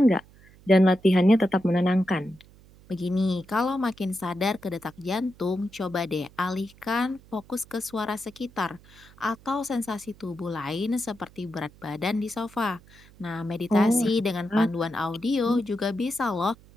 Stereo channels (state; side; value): noise; right; hum, 25 dB below the sound